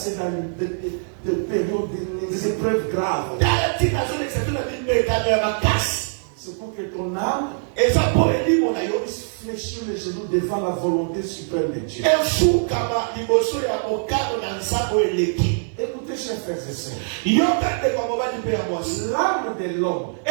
dans des périodes, des épreuves graves. C'est pour que ton âme puisse fléchir les genoux devant la volonté suprême de Dieu. Écoutez, chers frères et sœurs, l'âme de l'homme,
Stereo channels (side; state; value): left; silent; 60 dB below the other